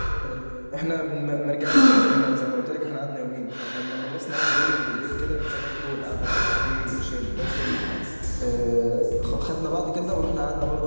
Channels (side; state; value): both; inverted; correlation -1.00